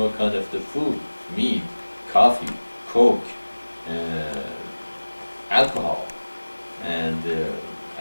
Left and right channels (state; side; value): inverted; both; correlation -1.00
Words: kind of the food, meat, coffee, coke, alcohol, and